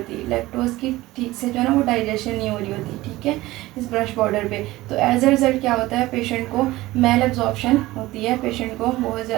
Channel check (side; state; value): left; quieter; 18.1 dB